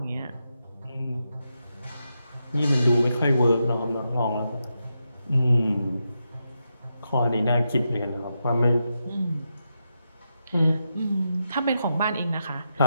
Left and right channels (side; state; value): both; inverted; correlation -0.86